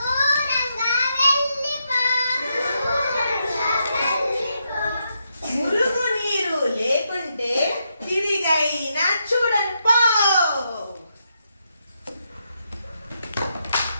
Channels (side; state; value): both; inverted; correlation -0.81